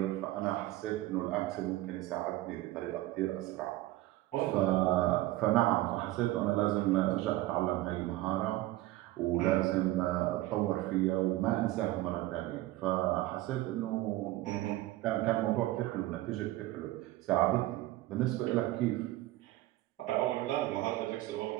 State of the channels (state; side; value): quieter; left; 16.9 dB